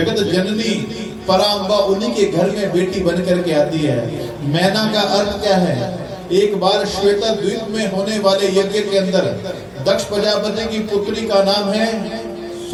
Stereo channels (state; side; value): identical; both; correlation 1.00